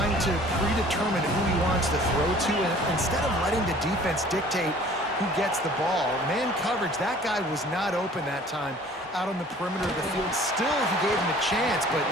to predetermine who he wants to throw to, and instead of letting the defense dictate who gets the ball. Man coverage, that guy was not open that time out on the perimeter of the field. Still, he gave him a chance, but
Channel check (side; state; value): both; normal; correlation 0.51